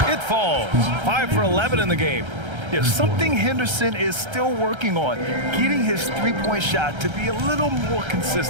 It falls. 5 for 11 in the game. Yeah, something Henderson is still working on, getting his three-point shot to be a little more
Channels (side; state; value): left; late; 1.3 ms